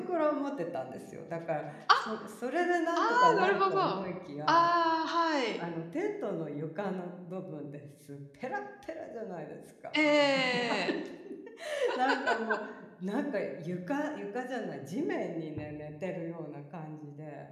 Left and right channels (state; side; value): identical; both; correlation 1.00